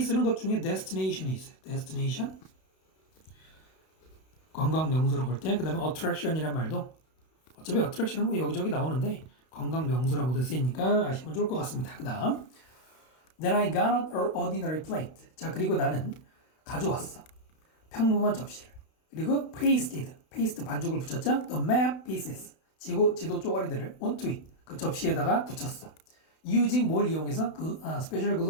쓰는 것 중에 destination이 있어요. destination 관광 명소로 볼 때, 그 다음에 attraction이란 말도 어차피 attraction은 뭐 여기저기 나오는데 관광 명소라고도 쓰이니까 아시면 좋을 것 같습니다. 그 다음 Then I got an ordinary plate. 자 그리고 나는 가져왔어. 평범한 접시를. 그리고 paste 반죽을 붙였죠. The map pieces 지도 쪼가리들을 onto it 그 접시에다가 붙였어. using 뭘 이용해서 그 스페셜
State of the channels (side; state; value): right; late; 32 ms